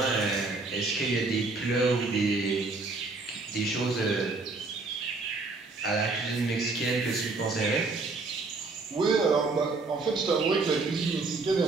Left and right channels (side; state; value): left; quieter; 3.7 dB